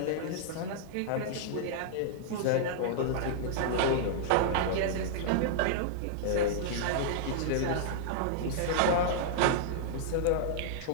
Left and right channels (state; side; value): different; both; correlation -0.01